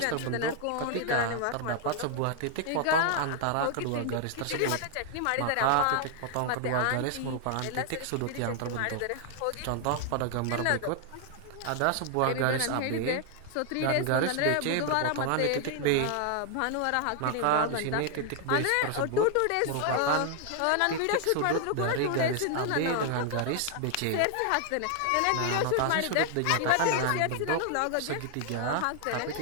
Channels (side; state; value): both; different; correlation 0.00